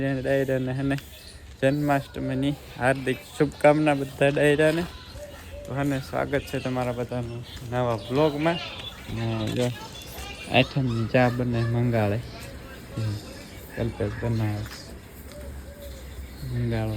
ડાયરાને અને જન્માષ્ટમીની હાર્દિક શુભકામના બધા ડાયરાને. તો અને સ્વાગત છે તમારા બધાનું નવા વ્લોગમાં. ને જો આઠમની ચા બને મંગાળે કલ્પેશ બનાવે મંગાળો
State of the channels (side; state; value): both; identical; correlation 1.00